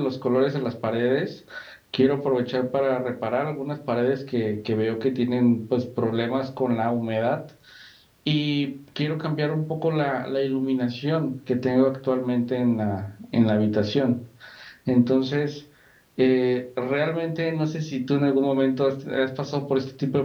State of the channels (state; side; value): identical; both; correlation 1.00